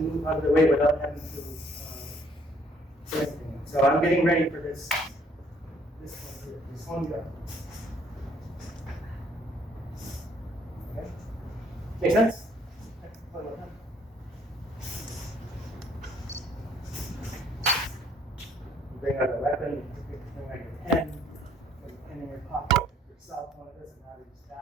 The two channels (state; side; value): normal; both; correlation 0.63